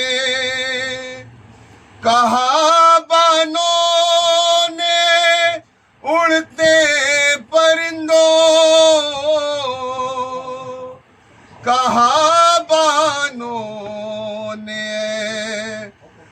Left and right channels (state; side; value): identical; both; correlation 1.00